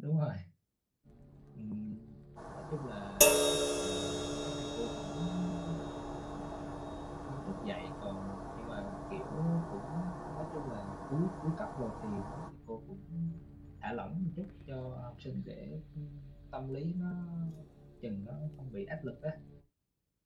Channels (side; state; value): both; identical; correlation 1.00